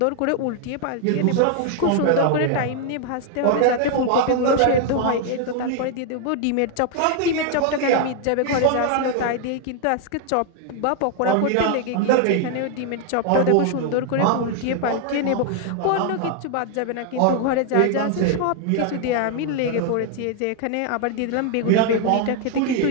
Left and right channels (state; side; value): different; both; correlation 0.00